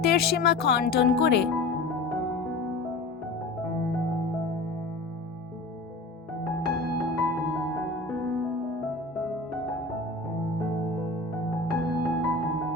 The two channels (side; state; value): right; quieter; 3.2 dB